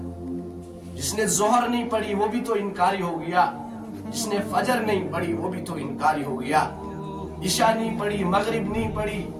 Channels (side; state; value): both; identical; correlation 1.00